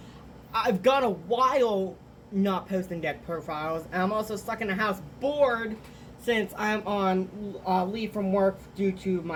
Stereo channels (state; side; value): identical; both; correlation 1.00